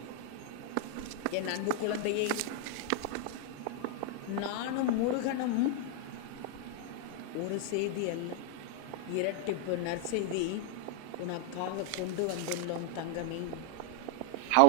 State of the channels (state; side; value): different; both; correlation 0.00